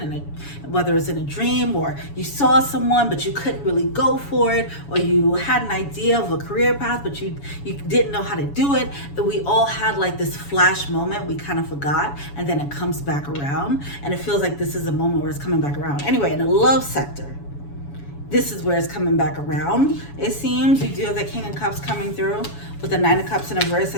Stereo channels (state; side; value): late; right; 7.1 ms